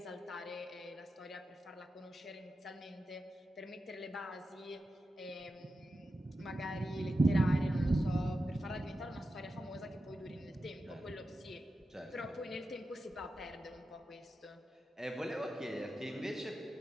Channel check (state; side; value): normal; both; correlation 0.91